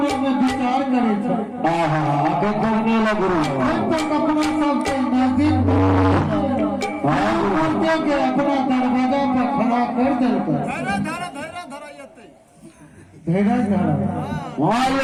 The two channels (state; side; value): identical; both; correlation 1.00